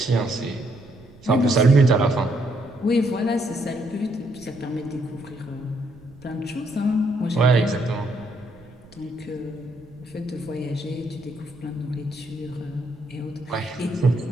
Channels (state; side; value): noise; right; rumble, 24 dB below the sound